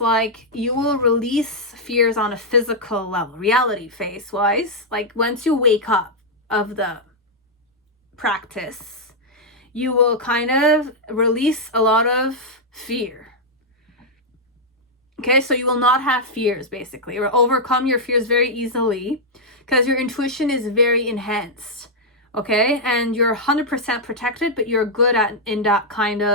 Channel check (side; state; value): both; normal; correlation -0.04